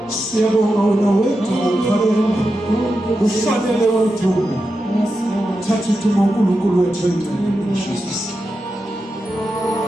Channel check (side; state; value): both; normal; correlation 0.89